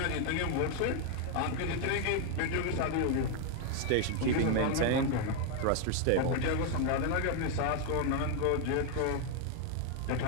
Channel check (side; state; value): both; different; correlation 0.01